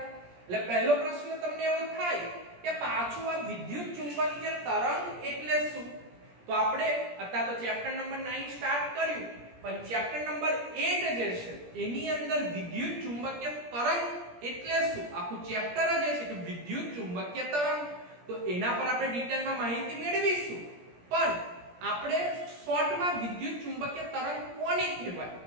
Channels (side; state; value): left; late; 17 ms